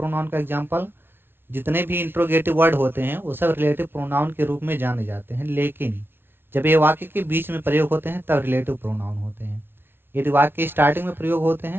का एग्जाम्पल, जितने भी इंट्रोगेटिव वर्ड होते हैं वो सब रिलेटिव प्रोनाउन के रूप में जाने जाते हैं, लेकिन जब ये वाक्य के बीच में प्रयोग होते हैं तब रिलेटिव प्रोनाउन होते हैं। यदि वाक्य के स्टार्टिंग में प्रयोग होते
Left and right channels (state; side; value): late; left; 0.11 ms